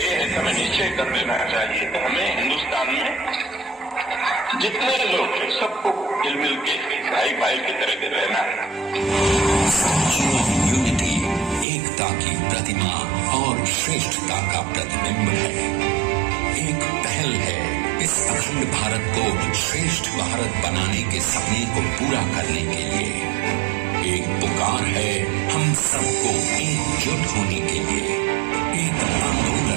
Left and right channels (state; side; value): drops out; left; at 11.7 s